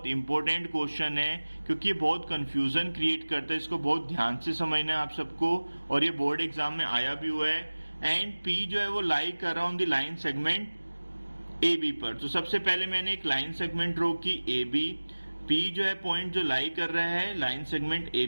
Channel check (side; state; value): both; inverted; correlation -1.00